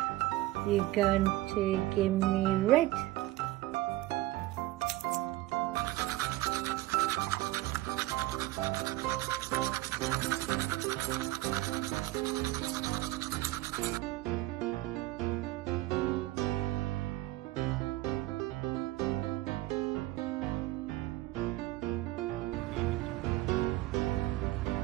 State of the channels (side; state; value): left; quieter; 17.4 dB